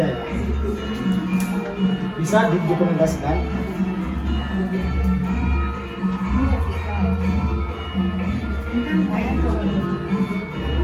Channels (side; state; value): both; identical; correlation 1.00